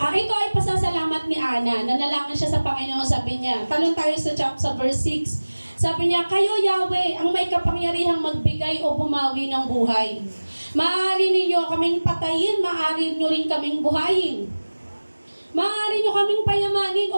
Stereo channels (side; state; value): both; inverted; correlation -1.00